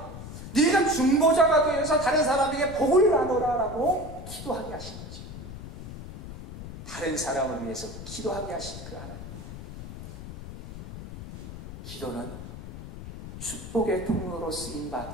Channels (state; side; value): noise; left; rumble, 11 dB below the sound